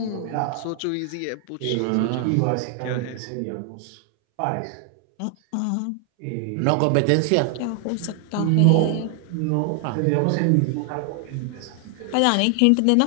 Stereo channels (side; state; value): both; different; correlation 0.00